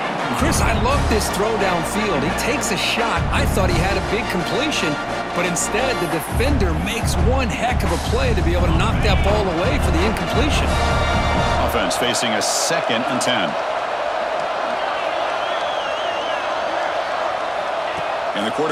Chris, I love this throw downfield. He takes a shot. I thought he had a big completion, but instead the defender makes one heck of a play to be able to knock that ball away for the incompletion. Offense facing a second and 10. And the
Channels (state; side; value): identical; both; correlation 1.00